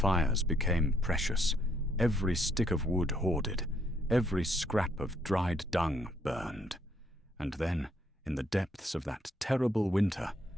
became precious, every stick of wood hoarded, every scrap of dried dung burned. And then, in the depths of that terrible winter,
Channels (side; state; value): both; normal; correlation 0.70